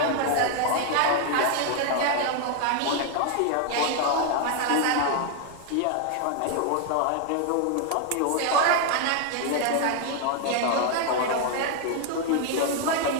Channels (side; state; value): both; different; correlation 0.00